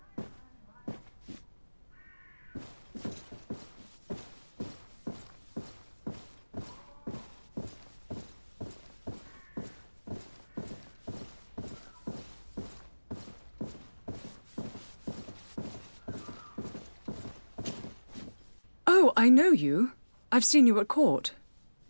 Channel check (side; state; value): both; inverted; correlation -1.00